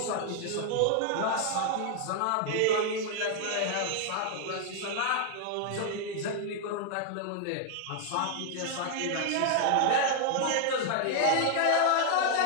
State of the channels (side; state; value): both; different; correlation 0.00